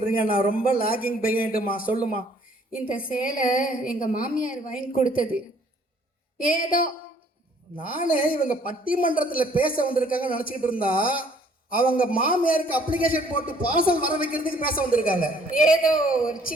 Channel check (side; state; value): both; normal; correlation 0.60